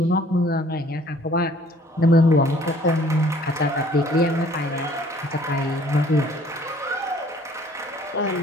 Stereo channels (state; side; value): normal; both; correlation 0.56